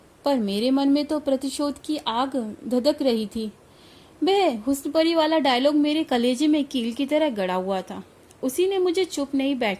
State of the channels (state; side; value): identical; both; correlation 1.00